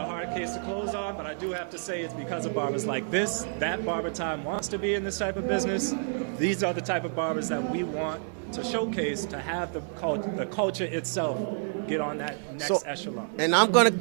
hard case to close on, but I do have to say it's because of barbers like this that BarberTime wants to be in this type of business. These are the type of barbers that we want to showcase, to have the culture itself get on that next echelon. And I'm going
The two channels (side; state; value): left; silent; digital silence